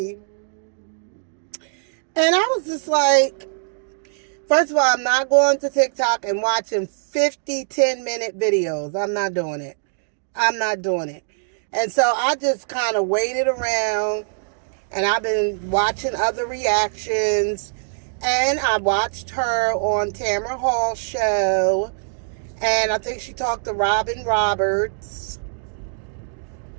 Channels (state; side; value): silent; left; digital silence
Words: And I was just like, first of all, I'm not going to TikTok and watching 50 10-minute videos. I'm not doing it. And so I just kind of waited around, and I've been watching other reactions. And I watched her on Tamara Hall's show. And I think she talked to Robin Roberts.